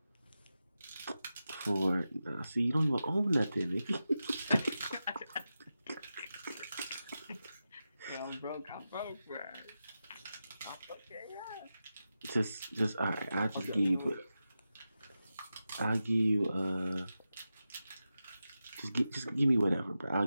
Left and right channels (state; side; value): inverted; both; correlation -0.91